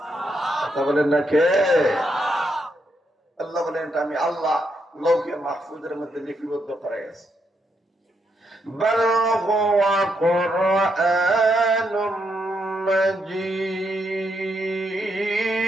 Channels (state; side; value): normal; both; correlation 0.79